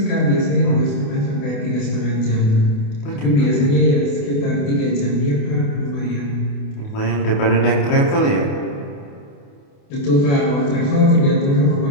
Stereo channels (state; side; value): late; right; 28 ms